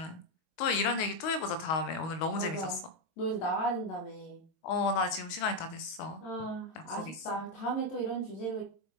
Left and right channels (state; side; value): late; right; 19 ms